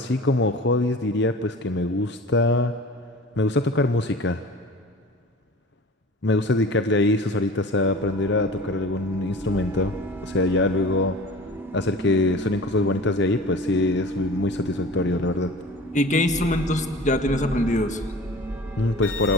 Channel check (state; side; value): normal; both; correlation 0.39